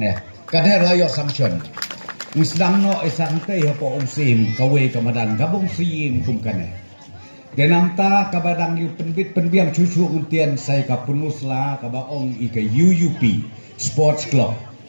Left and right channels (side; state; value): both; inverted; correlation -1.00